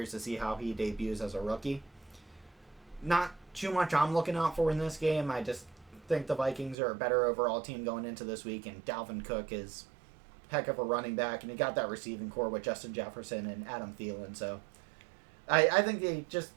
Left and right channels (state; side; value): drops out; left; at 6.8 s